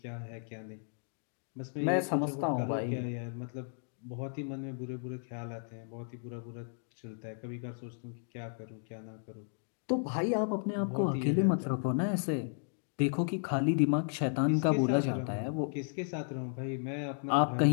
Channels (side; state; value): right; silent; digital silence